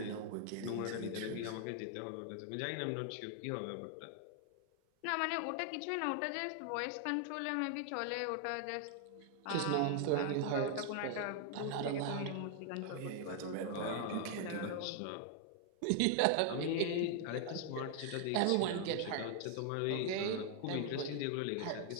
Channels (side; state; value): both; different; correlation 0.00